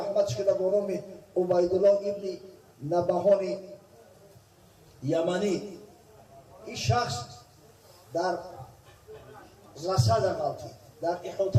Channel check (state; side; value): identical; both; correlation 1.00